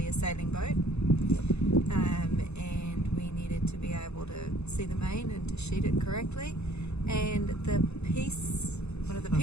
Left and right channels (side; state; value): right; late; 0.80 ms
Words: a sailing boat, and we needed to be able to see the main and to sheet it correctly. And one of the